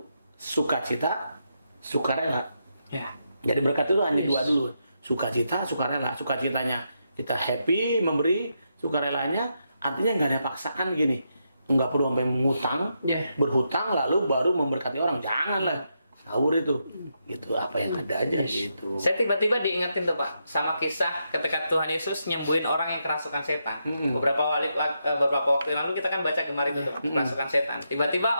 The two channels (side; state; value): both; inverted; correlation -0.82